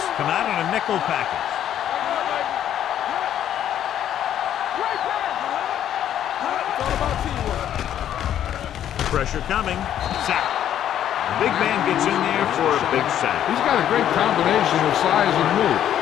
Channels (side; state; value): right; quieter; 10.7 dB